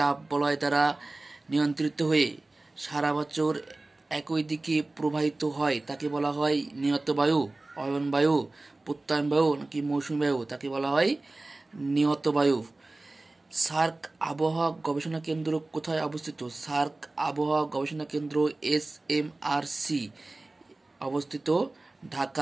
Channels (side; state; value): left; quieter; 3.0 dB